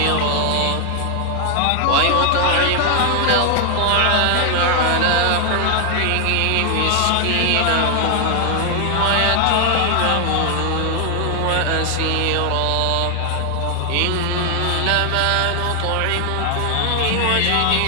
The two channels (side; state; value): both; different; correlation 0.00